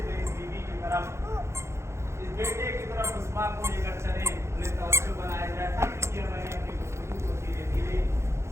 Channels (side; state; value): left; late; 0.13 ms